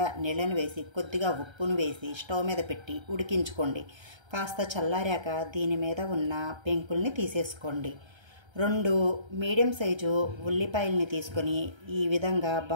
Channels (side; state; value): left; late; 1.3 ms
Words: నీళ్ళను వేసి కొద్దిగా ఉప్పును వేసి స్టవ్ మీద పెట్టి ఉడికించుకోండి. కాస్త చల్లారాక దీని మీద ఉన్న పెంకుల్ని తీసేసుకోండి. 2 మీడియం సైజు ఉల్లిపాయల్ని తీసుకొని ఈ విధంగా